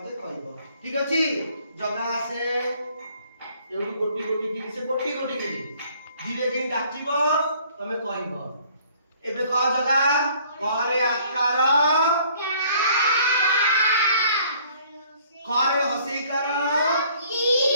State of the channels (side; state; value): both; inverted; correlation -0.59